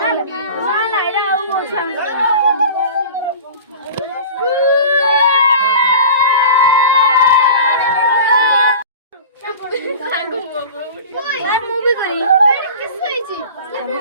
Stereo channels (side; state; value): both; inverted; correlation -0.37